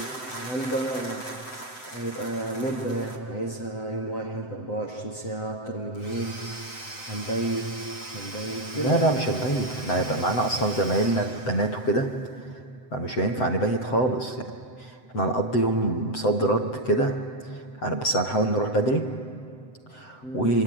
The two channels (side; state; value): right; late; 7.8 ms